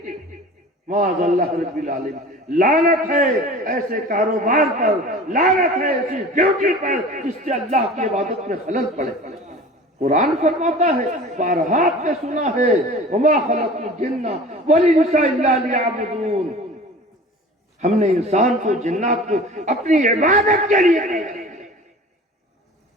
معاذ اللہ رب العالمین، لعنت ہے ایسے کاروبار پر، لعنت ہے ایسی ڈیوٹی پر جس سے اللہ کی عبادت میں خلل پڑے۔ قرآن فرماتا ہے، بارہا آپ نے سنا ہے، وما خلقت الجن والانس الا لیعبدون، ہم نے انسان کو جنات کو اپنی عبادت کے لیے پیدا کیا۔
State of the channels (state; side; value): normal; both; correlation 0.40